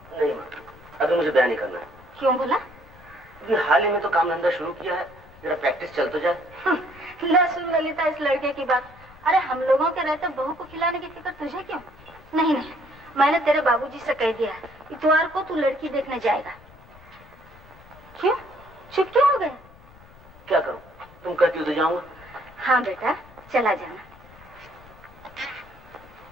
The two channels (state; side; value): noise; left; rumble, 23 dB below the sound